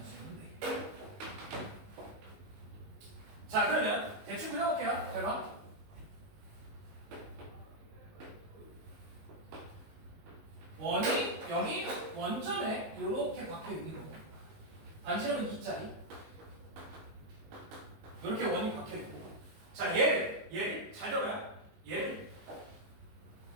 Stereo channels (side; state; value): left; late; 19 ms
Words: 4개. 자, 그러면 대충 그려볼게요. 잘 봐. 원이 0이 원점에 이렇게 박혀 있는 거. 반지름은 2짜리. 이렇게 원이 박혀 있고. 자, 얘를 잘 들어요. 얘를